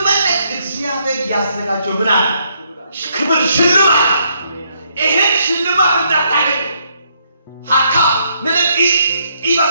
እግዚአብሔር ያዘጋጀው ምን አለ ክብር ሽልማት ይሄን ሽልማት እንዳታገኝ ሀካ ነለቂ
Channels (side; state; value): both; inverted; correlation -0.73